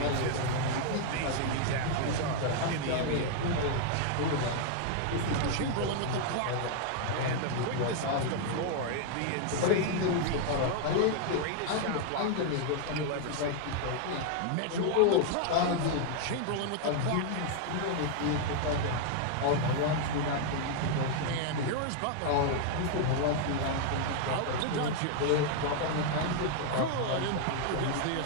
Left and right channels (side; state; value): both; different; correlation 0.00